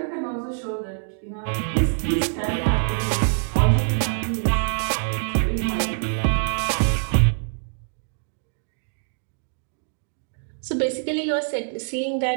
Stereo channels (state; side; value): silent; left; digital silence